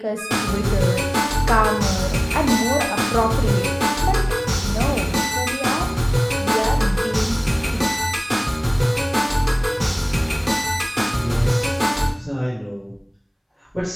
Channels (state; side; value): identical; both; correlation 1.00